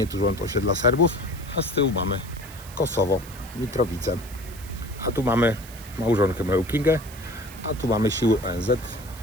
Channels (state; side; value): noise; right; hiss, 18 dB below the sound